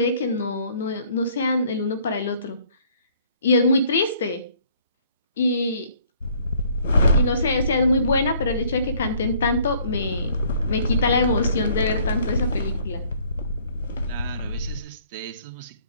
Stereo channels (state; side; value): inverted; both; correlation -0.60